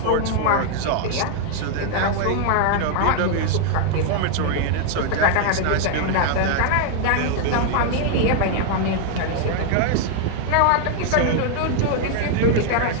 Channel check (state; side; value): different; both; correlation 0.00